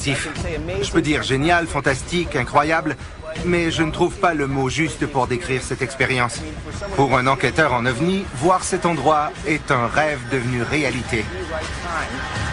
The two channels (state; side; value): identical; both; correlation 1.00